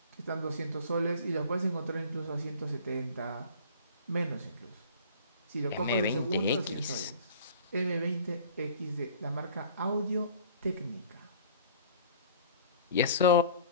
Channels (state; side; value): inverted; both; correlation -0.47